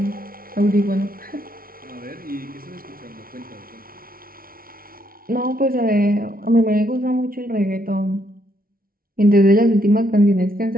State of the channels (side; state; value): left; late; 0.43 ms